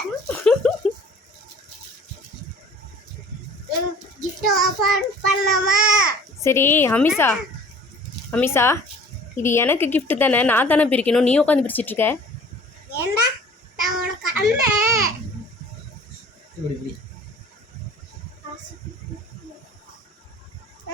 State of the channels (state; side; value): normal; both; correlation 0.48